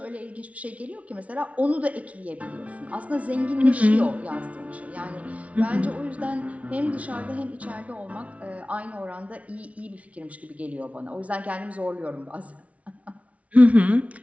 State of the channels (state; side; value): late; left; 0.066 ms